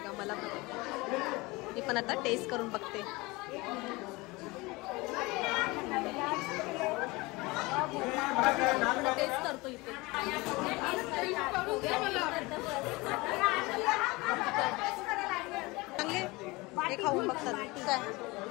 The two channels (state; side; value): quieter; right; 23.3 dB